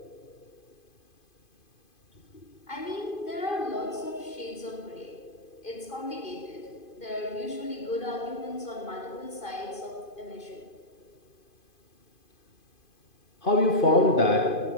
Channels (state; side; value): late; right; 2.5 ms